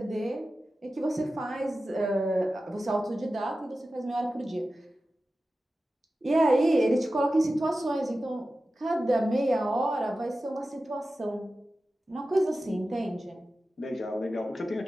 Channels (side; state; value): both; normal; correlation 0.94